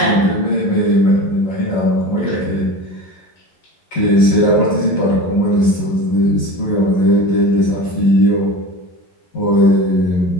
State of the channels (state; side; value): late; right; 11 ms